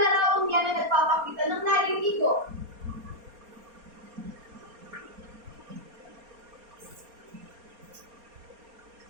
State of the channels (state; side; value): late; left; 4.3 ms